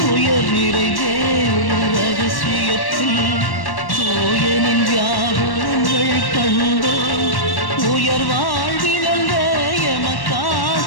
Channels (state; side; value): late; right; 1.1 ms